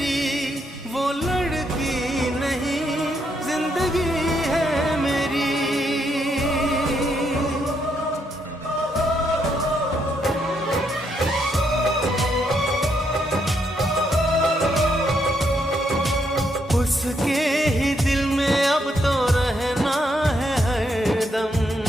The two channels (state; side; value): normal; both; correlation 0.76